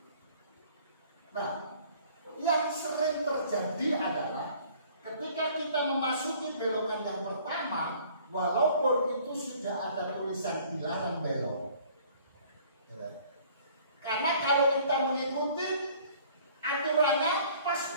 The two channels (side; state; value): both; inverted; correlation -0.54